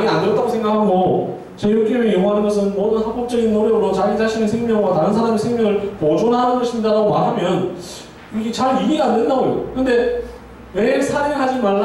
안 들었다고 생각하고 제6계명이 요구하는 것은 모든 합법적인 노력으로 자기 자신의 생명과 다른 사람의 생명을 보존하는 것입니다 라고 말하면 이게 잘 이해가 안 된다고요. 근데 왜 살인하지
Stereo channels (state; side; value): identical; both; correlation 1.00